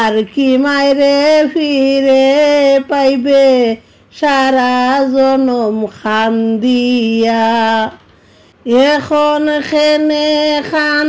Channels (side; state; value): both; identical; correlation 1.00